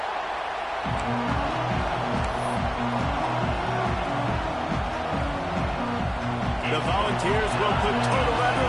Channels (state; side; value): identical; both; correlation 1.00